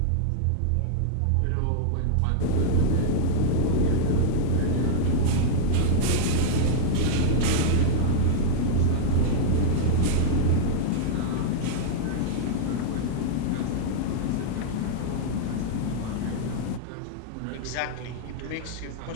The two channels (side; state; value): both; different; correlation -0.02